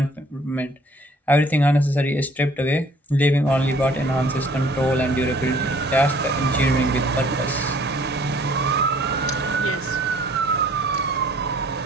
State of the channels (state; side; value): normal; both; correlation 0.57